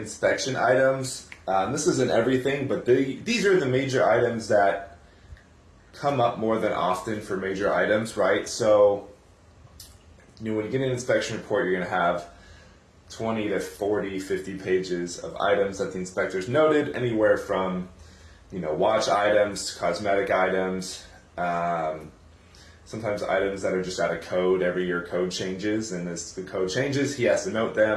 items. This isn't everything, but these are the major items that come up more than often for major items, right? So, when you get an inspection report, you're going to have 20 to 40, 50 pages of items that the inspectors noted, anywhere from, watch items to cosmetic items. Sometimes items that are just out of code. Every year code changes, and as the code changes, he has to note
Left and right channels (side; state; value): both; identical; correlation 1.00